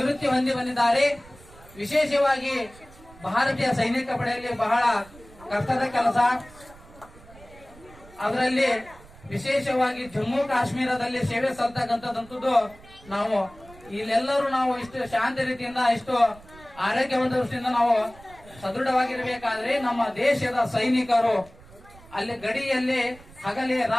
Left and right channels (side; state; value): right; noise; rumble, 22 dB below the sound